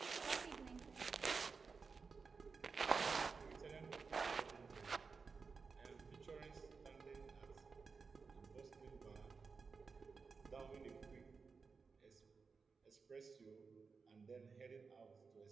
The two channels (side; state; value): left; quieter; 5.0 dB